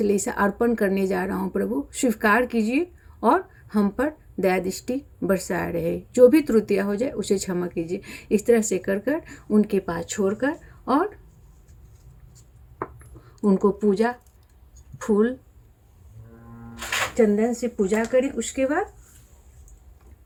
अर्पण करने जा रहा हूँ। प्रभु स्वीकार कीजिए और हम पर दया दृष्टि बरसाए रहे, जो भी त्रुटियां हो जाए उसे क्षमा कीजिए। इस तरह से कर कर उनके पास छोड़कर और उनको पूजा, फूल चंदन से पूजा करें। उसके बाद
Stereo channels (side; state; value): both; identical; correlation 1.00